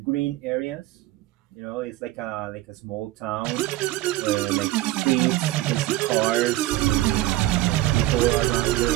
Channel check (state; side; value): quieter; left; 16.2 dB